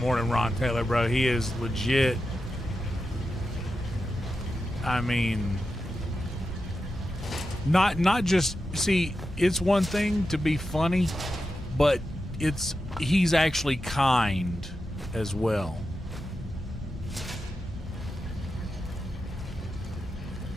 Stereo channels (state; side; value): normal; both; correlation 0.90